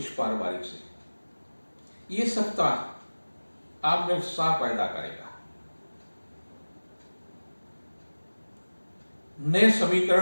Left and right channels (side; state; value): both; inverted; correlation -1.00